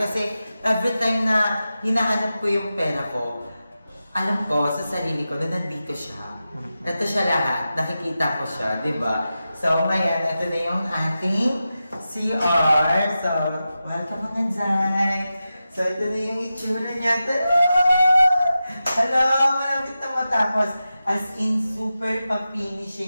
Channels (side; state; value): both; inverted; correlation -0.92